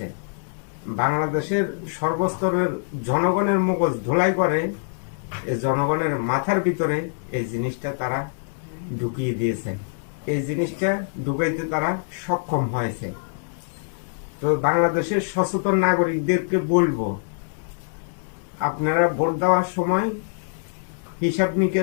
বাংলাদেশের সর্বস্তরের জনগণের মগজ ধোলাই করে এই জনগণের মাথার ভিতরে এই জিনিসটা তারা ঢুকিয়ে দিয়েছে। এই জিনিসটা ঢুকাইতে তারা সক্ষম হয়েছে। তো বাংলাদেশের সচেতন নাগরিকদেরকে বলবো, আপনারা ভোট দেওয়ার সময় হিসাব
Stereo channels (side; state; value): right; silent; 62 dB below the other